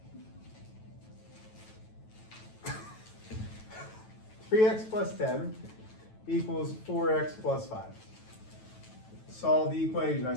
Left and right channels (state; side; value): late; right; 9.2 ms